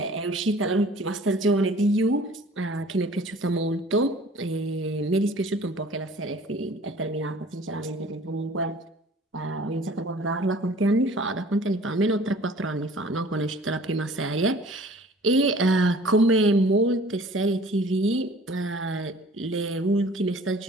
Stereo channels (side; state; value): both; normal; correlation 0.49